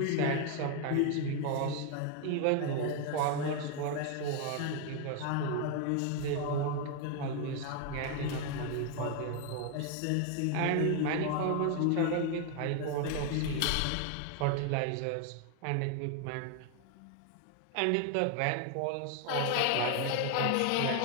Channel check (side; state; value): both; different; correlation 0.01